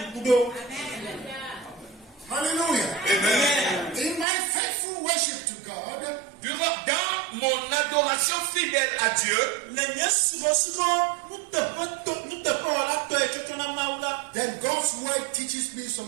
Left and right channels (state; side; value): drops out; left; at 4.2 s